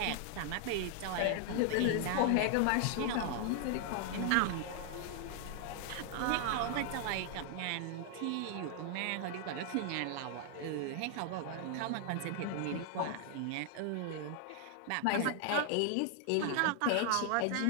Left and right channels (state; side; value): different; both; correlation 0.00